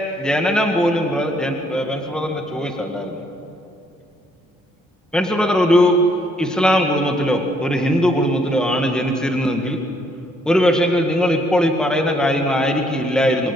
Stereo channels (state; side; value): normal; both; correlation 0.68